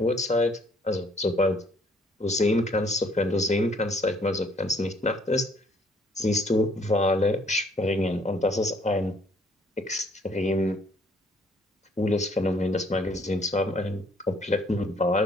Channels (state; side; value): normal; both; correlation 0.63